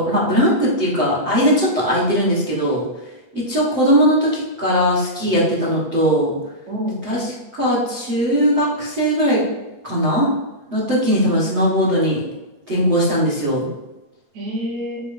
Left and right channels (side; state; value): left; late; 8.4 ms